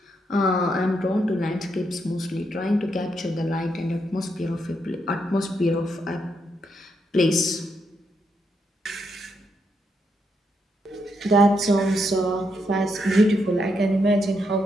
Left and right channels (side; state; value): both; normal; correlation 0.79